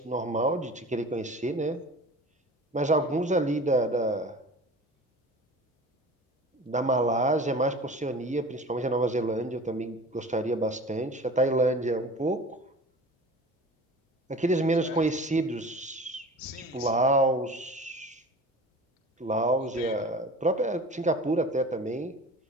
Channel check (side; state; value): both; normal; correlation 0.39